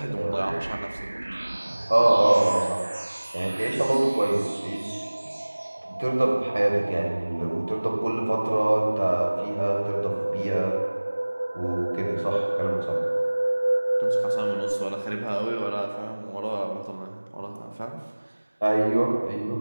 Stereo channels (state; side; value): inverted; both; correlation -1.00